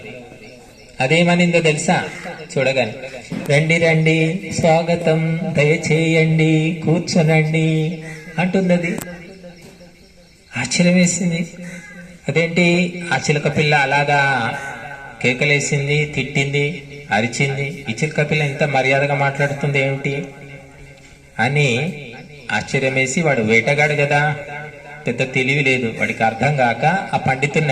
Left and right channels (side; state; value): both; identical; correlation 1.00